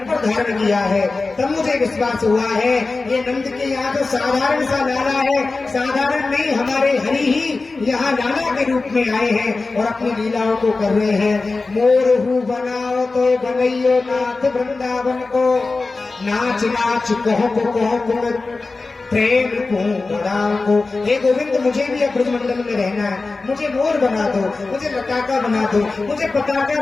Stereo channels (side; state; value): right; quieter; 3.7 dB